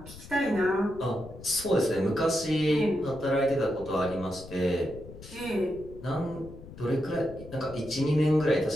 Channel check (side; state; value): left; noise; rumble, 16 dB below the sound